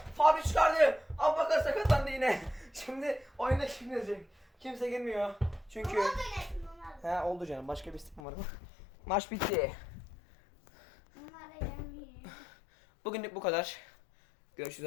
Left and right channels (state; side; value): drops out; right; at 8.2 s